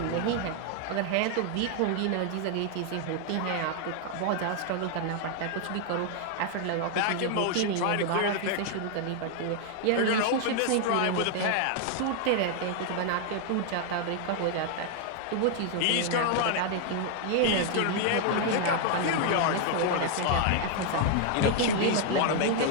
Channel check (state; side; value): different; both; correlation 0.00